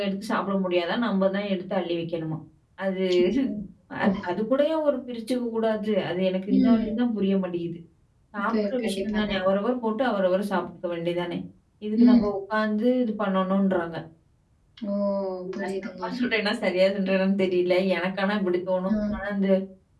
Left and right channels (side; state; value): both; identical; correlation 1.00